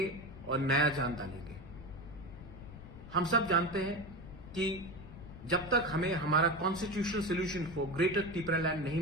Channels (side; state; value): left; noise; rumble, 15 dB below the sound